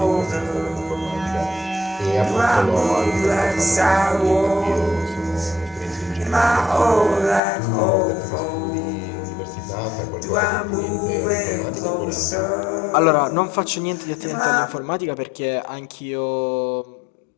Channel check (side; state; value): right; drops out; at 7.4 s